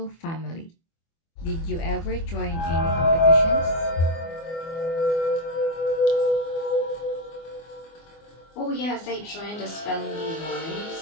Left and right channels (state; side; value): late; right; 24 ms